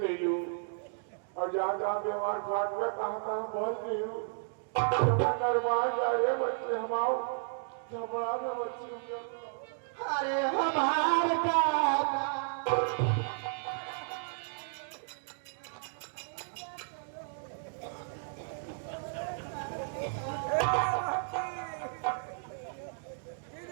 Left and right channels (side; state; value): left; silent; digital silence